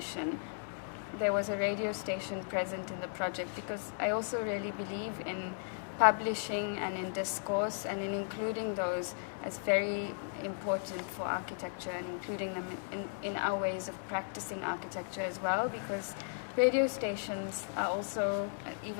there was a radio station present in the project, because I also really believe in publishing and in discourse and in including those as very important for architecture and including them in our ways of practicing architecture as well, because radio stations are also,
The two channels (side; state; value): right; silent; digital silence